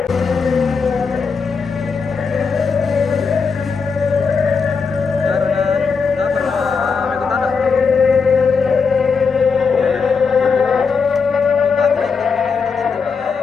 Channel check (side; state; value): right; quieter; 5.3 dB